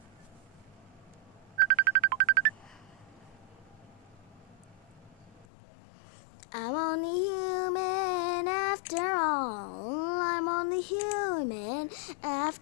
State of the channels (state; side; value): drops out; right; at 5.5 s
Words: I'm only human after all. I'm only human